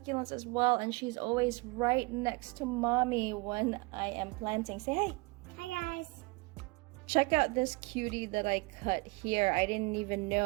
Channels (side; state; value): left; quieter; 26.8 dB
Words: as well, and she's always right next to mommy when I am planting. Say hi. Hi guys. Check out this cutie that I cut here. I didn't even